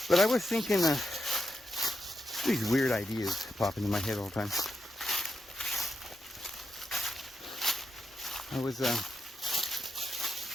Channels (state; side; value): normal; both; correlation 0.85